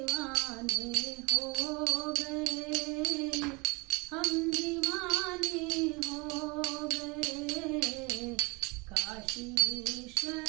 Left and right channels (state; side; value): quieter; left; 27.2 dB